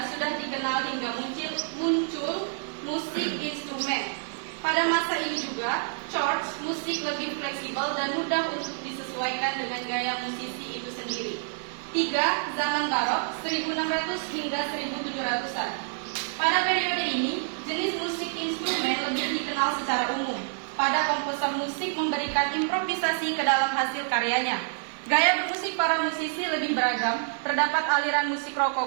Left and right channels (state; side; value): silent; left; digital silence